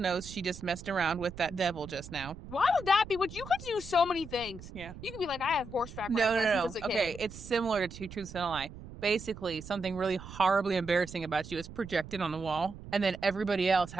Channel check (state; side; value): noise; right; rumble, 14 dB below the sound